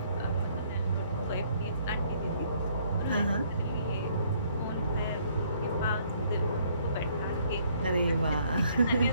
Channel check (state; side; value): inverted; both; correlation -0.65